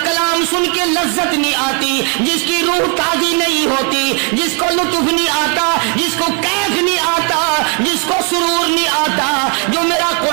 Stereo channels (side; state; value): left; quieter; 37.7 dB